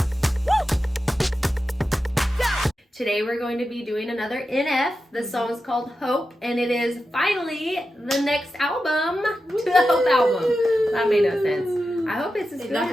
Today we're going to be doing another NF. The song is called Hope, and it is finally the next album to the Hope album. That made no sense. I hope it's as good as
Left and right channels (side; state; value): both; normal; correlation 0.91